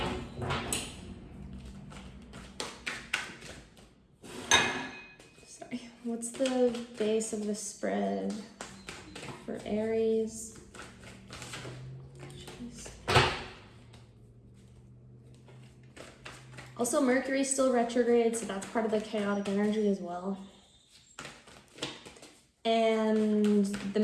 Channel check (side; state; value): both; identical; correlation 1.00